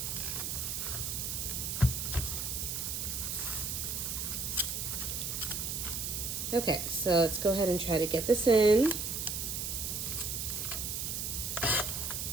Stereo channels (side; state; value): right; noise; hiss, 2 dB below the sound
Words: Okay, so let's go ahead and try to get this in.